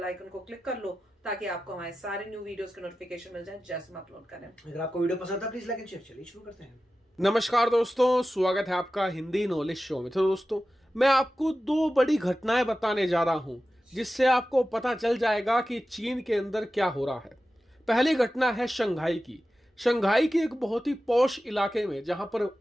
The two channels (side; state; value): both; normal; correlation 0.94